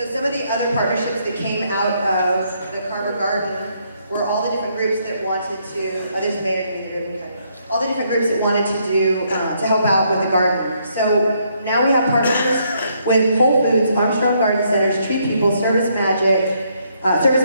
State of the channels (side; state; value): both; inverted; correlation -0.72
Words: some of the other partnerships that came out of the Carver Garden were all the different groups that wanted to, there's a mayor in the room, all the different groups that wanted to do, to help out with the garden. So now we have partnerships with Whole Foods, Armstrong Garden Centers, Tree People, Service Masters,